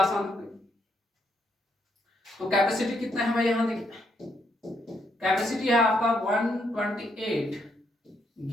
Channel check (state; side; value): normal; both; correlation 0.75